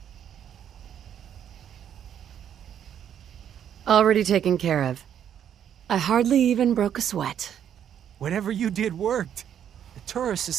Already taken care of. I hardly even broke a sweat. Whatever you did worked. The tourists has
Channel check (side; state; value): left; quieter; 9.4 dB